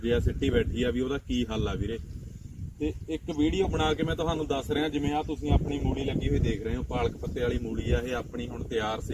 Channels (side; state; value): both; identical; correlation 1.00